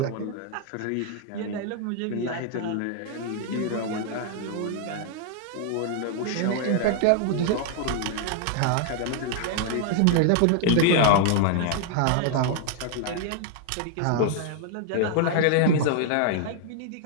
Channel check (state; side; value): different; both; correlation 0.00